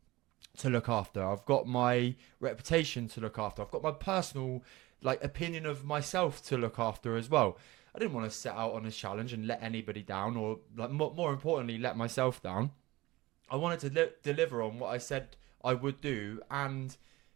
look after. I've got my reputation to look after. I've got my personal opinion of myself to look after as well. I didn't want to set out on a challenge and let anybody down, or more importantly, let myself down. I wanted to deliver on what I said I would do, and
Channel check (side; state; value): left; quieter; 19.6 dB